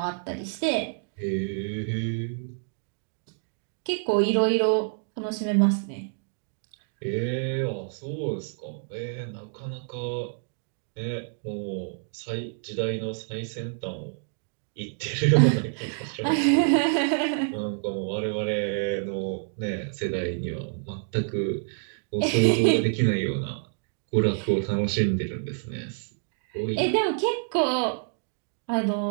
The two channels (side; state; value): left; silent; digital silence